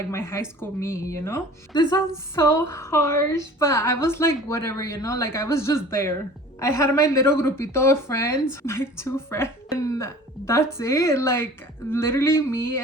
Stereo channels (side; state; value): both; normal; correlation 0.44